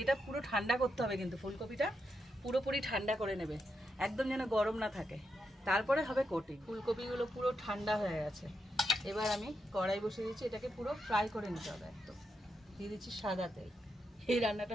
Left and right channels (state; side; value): normal; both; correlation 0.84